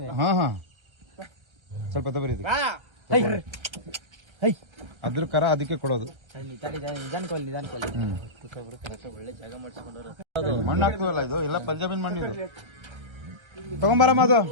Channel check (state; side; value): late; left; 1.3 ms